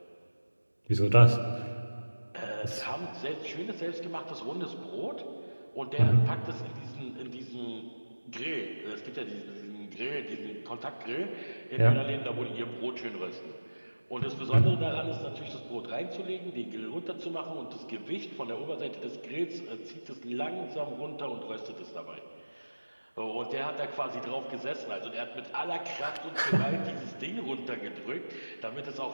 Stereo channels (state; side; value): inverted; both; correlation -1.00